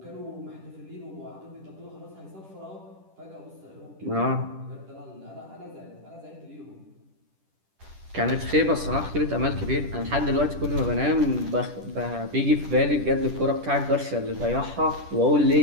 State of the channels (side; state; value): left; late; 10 ms